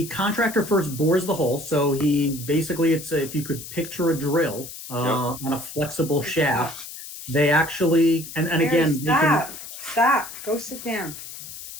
contractor first bores the hole. So he basically, if you could picture a drill on a flexible shaft, They actually, and Mary, again, stop. Go sit down.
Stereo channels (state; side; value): noise; left; hiss, 12 dB below the sound